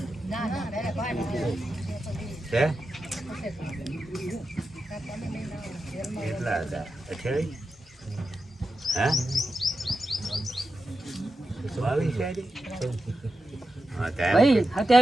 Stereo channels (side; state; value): both; normal; correlation 0.90